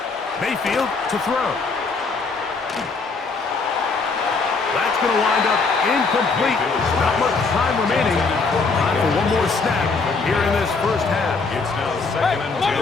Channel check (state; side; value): quieter; right; 4.3 dB